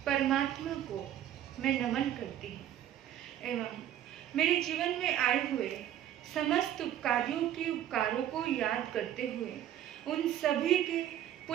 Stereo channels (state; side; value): quieter; left; 11.4 dB